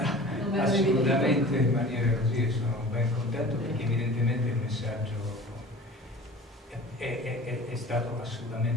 assolutamente in maniera così, e sono ben contento perché evidentemente il messaggio è stato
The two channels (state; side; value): normal; both; correlation 0.41